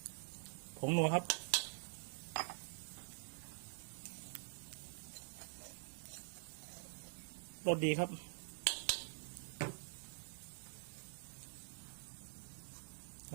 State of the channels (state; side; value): silent; left; digital silence